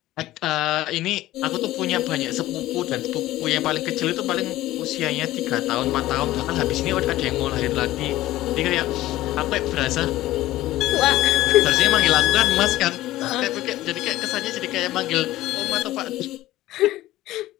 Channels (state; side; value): quieter; right; 15.9 dB